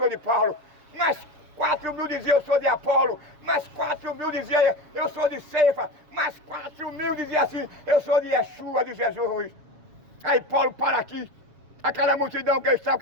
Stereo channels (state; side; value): late; left; 6.7 ms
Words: de Paulo. Mas 4.000 diziam: eu sou de Apolo. Mas 4.000 diziam: eu sou de Cefa. Mas 4.000 diziam assim: eu sou de Yeshua, de Jesus. Aí Paulo para aqui, aquela multidão que estava